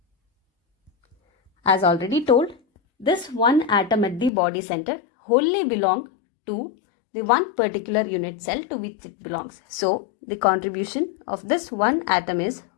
As already told, this 1 atom at the body center wholly belongs to the one particular unit cell to which it belongs. So, the contribution of this 1 atom is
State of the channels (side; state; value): right; drops out; at 4.3 s